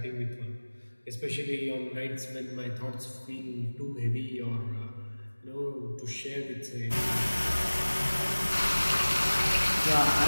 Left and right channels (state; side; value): inverted; both; correlation -1.00